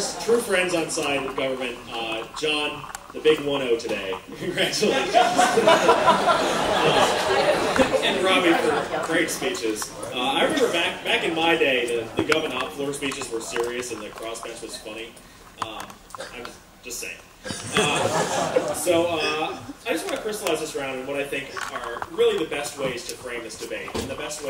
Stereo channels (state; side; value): identical; both; correlation 1.00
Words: true friends on side with government, John, the big 1-0 today. Congratulations. And Robbie for great speeches. I remember back in my day, the government floor speeches were serious and the crossbench was funny. I was just saying. I just want to crystallize this around in what I think are really the best ways to frame this debate and the best